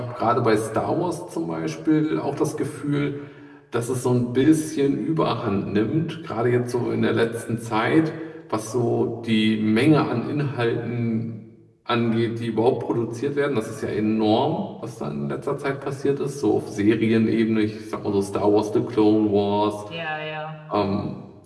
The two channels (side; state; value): both; identical; correlation 1.00